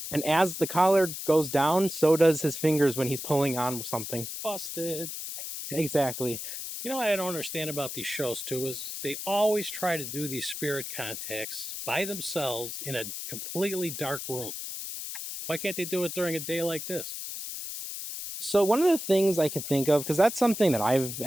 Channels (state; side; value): noise; left; hiss, 7 dB below the sound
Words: And as the collar goes down, so does his fingers when he's pulling on something. Busted. Exactly. You know what I don't understand about these shows too is they always try to do these spirit contacts by themselves in a completely dark room. Why can't they do it during a day like this? So one of the things I can think of, because that's something that I've